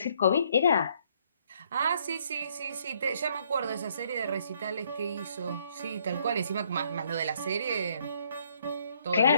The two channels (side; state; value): both; inverted; correlation -0.67